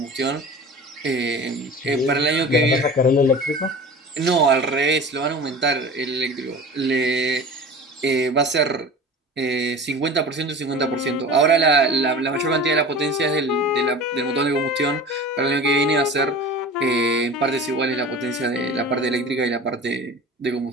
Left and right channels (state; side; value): normal; both; correlation 0.36